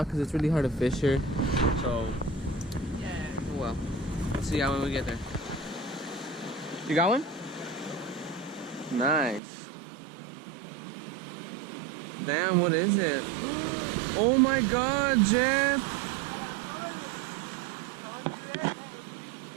because it's really hard to fish here. So yeah. Oh well. See y'all when we get there. You got one? Nice. Damn, what is it? Oh my god, Jeff!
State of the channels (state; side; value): drops out; left; at 9.4 s